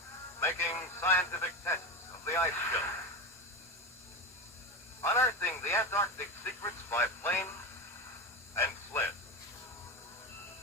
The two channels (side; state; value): both; normal; correlation 0.20